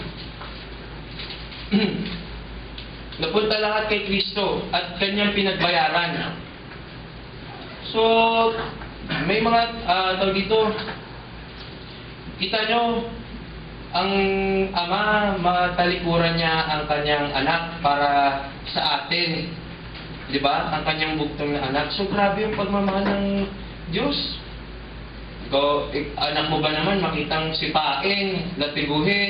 Napunta lahat kay Kristo at kanyang pinagbayaran. So, may mga tawag dito, Kita nyo, ang Ama, matalikuran niya ang kanyang anak para sa atin. Di ba? Ang kanyang buktong na anak. So, grabe yung pagmamahal ng Diyos. Ikaw, anak mo ba naman makitang sipain,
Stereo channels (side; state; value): both; identical; correlation 1.00